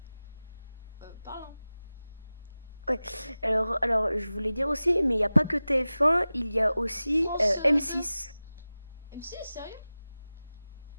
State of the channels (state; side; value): inverted; both; correlation -0.97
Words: parlant. ouais. Alors, je voulais dire aussi, mais il n'y a pas que TF1, il y a aussi France 2. M6. M6, sérieux?